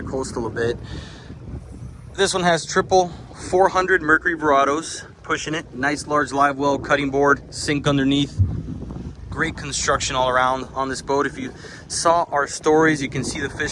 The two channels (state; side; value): identical; both; correlation 1.00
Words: a bit. This one has triple 400 Mercury Verados, pushing it. Nice large live well, cutting board, sink underneath. Great construction all around on this boat. If you saw our stories, you can see the